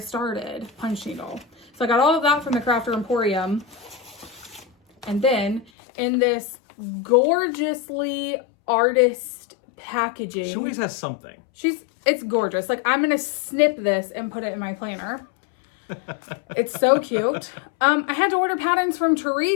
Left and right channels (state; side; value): drops out; right; at 5.7 s